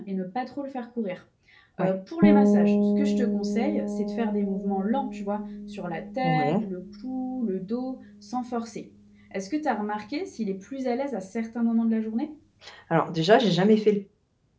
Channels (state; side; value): identical; both; correlation 1.00